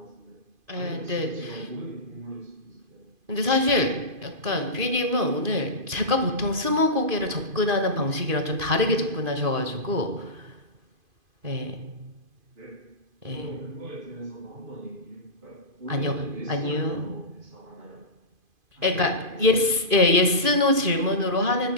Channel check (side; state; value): left; late; 2.5 ms